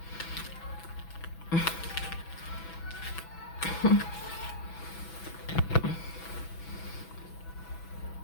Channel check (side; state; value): right; late; 6.0 ms